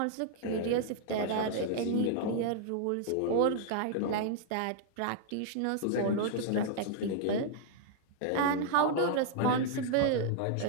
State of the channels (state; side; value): different; both; correlation -0.01